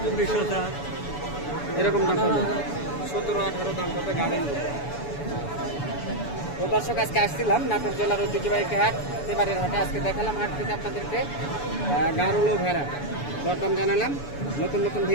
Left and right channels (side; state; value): right; late; 7.0 ms